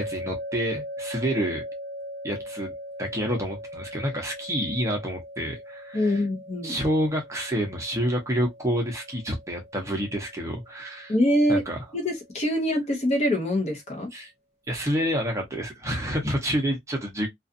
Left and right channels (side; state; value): both; normal; correlation 0.63